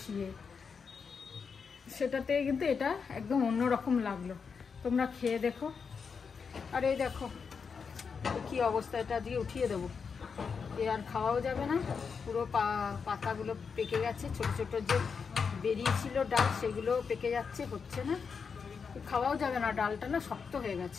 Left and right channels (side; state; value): right; quieter; 5.8 dB